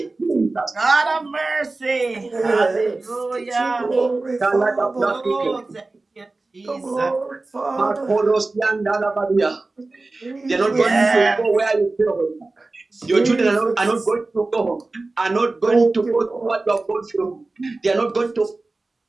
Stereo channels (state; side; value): quieter; left; 3.3 dB